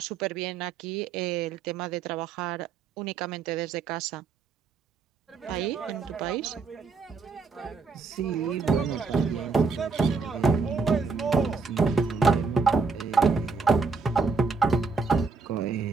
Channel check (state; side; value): quieter; left; 4.7 dB